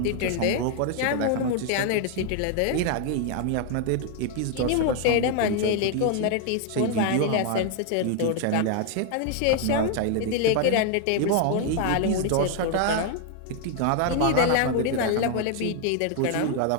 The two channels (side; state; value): both; different; correlation 0.00